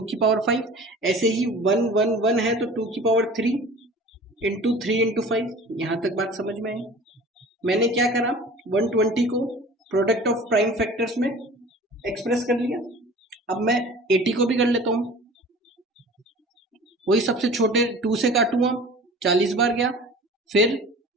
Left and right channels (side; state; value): both; normal; correlation 0.42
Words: की पावर 5। ऐसे ही 1 1 1 है, तो 2 की पावर 3 इंटू 3 इंटू 5। यहाँ तक बात समझ में आई? मैंने क्या करा, 120 को प्रोडक्ट ऑफ प्राइम फैक्टर्स में एक्सप्रेस कर लिया। अब मैं 80 को भी कर लेता हूँ, वही सबसे छोटे 2 से काटूंगा, 40 बार गया, फिर